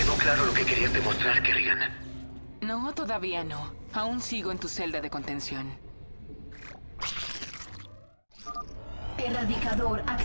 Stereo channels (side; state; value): both; inverted; correlation -1.00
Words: claro lo que querías demostrar, Kerrigan. No, todavía no. Aún sigo en tu celda de contención. Erradicador